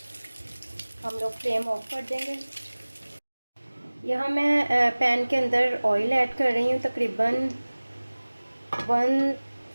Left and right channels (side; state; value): both; inverted; correlation -1.00